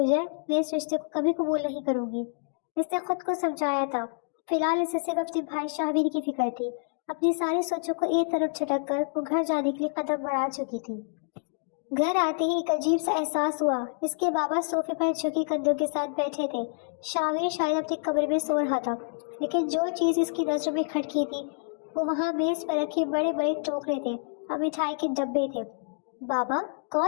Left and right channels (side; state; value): right; silent; digital silence